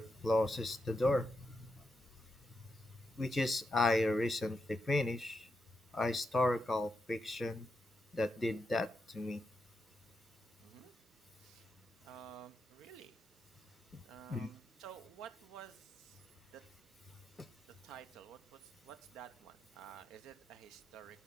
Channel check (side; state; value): both; normal; correlation 0.85